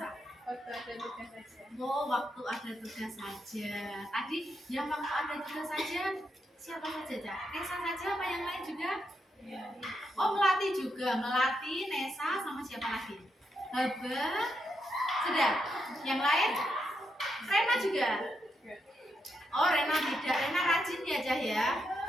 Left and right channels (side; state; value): both; normal; correlation 0.82